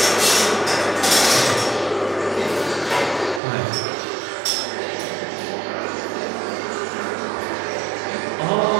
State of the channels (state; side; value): drops out; left; at 3.4 s